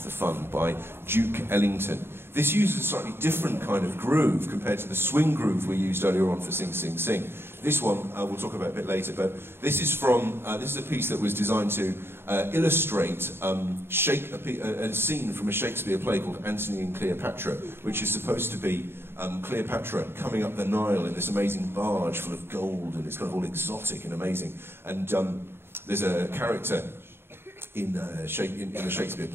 by Duke Ellington. This uses a slightly different kind of groove compared to the swing groove we used earlier on for Sing, Sing, Sing. This one we'll talk about a bit later, but this is from, this is a piece that was designed to illustrate a scene from a Shakespeare play called Antony and Cleopatra, which is supposed to be Cleopatra coming up the Nile in this amazing barge full of gold, and it's kind of all exotic and amazing. And there's a character in the Shakespeare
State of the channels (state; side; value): late; left; 0.11 ms